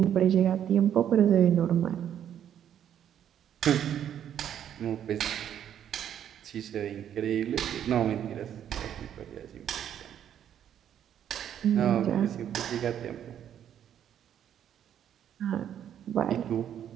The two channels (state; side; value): quieter; left; 9.8 dB